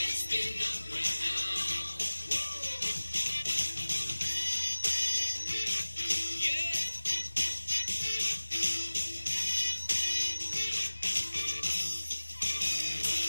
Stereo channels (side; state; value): both; inverted; correlation -1.00